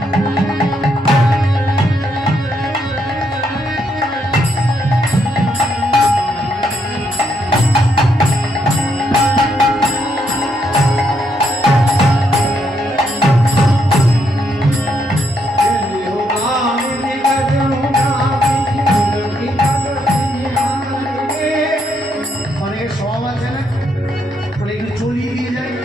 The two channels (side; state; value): both; normal; correlation 0.76